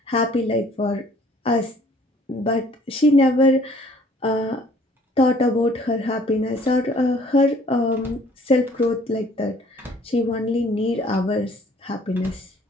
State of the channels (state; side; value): normal; both; correlation 0.57